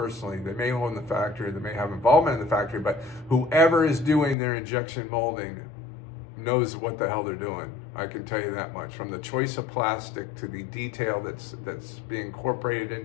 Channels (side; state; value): right; drops out; at 4.4 s